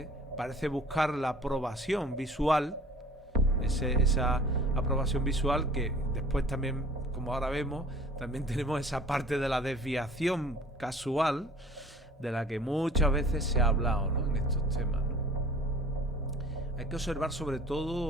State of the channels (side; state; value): both; normal; correlation 0.48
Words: parece buscar la aprobación visual, esa aprobación visual que después también, como ahora vemos, también tenemos esa parte de la desviación casual de la que muchas veces se ha hablado, ¿no?, en estos temas, ¿no? Hay que observar sobre